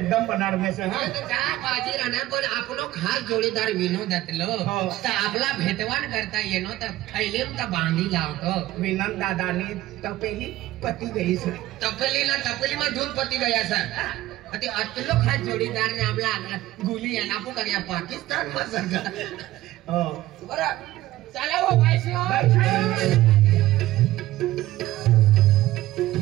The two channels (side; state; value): left; quieter; 15.9 dB